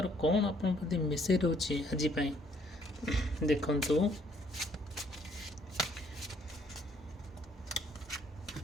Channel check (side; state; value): both; normal; correlation 0.65